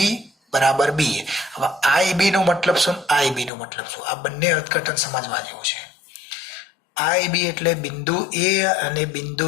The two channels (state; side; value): drops out; right; at 3.5 s